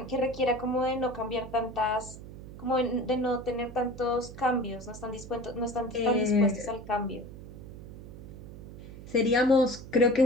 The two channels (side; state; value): right; noise; hum, 14 dB below the sound